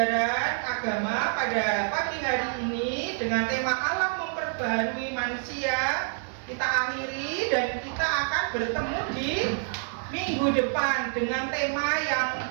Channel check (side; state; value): left; silent; 57 dB below the other